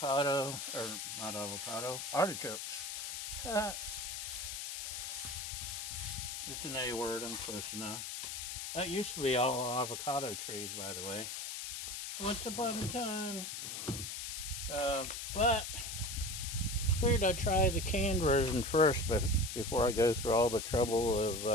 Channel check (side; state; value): left; noise; hiss, 5 dB below the sound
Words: or not avocado, artichokes. It's an A word, I'm close enough. That used to be all avocado trees, by the way. Once upon a time. But figured I'd try the canned version first before I go through all the trouble